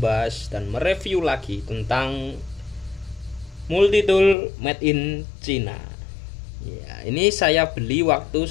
dan mereview lagi tentang Multitool made in China. Ya, ini saya beli waktu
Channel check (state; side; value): drops out; right; at 4.4 s